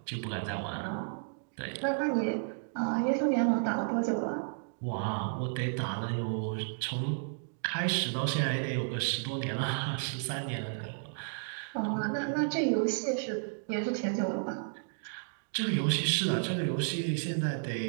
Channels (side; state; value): left; silent; digital silence